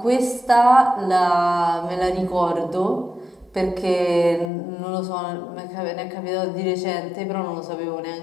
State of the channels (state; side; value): drops out; right; at 4.5 s